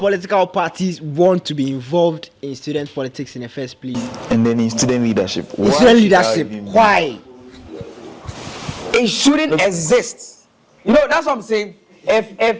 parties want to be involved in student politics in the first place? And then in student leadership. Why? It shouldn't exist. You know, that's what I'm saying.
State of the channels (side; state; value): both; identical; correlation 1.00